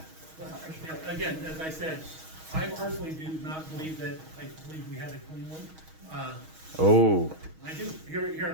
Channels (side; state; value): left; late; 6.3 ms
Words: Again, as I said, I personally do not believe that, I believe we had a clean one. Oh, I do, here